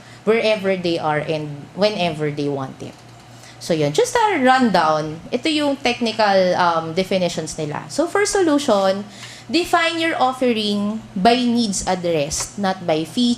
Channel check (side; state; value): both; identical; correlation 1.00